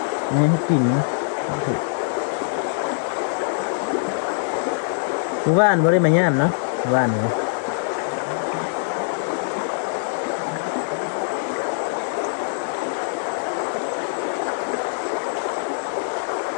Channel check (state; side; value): silent; right; digital silence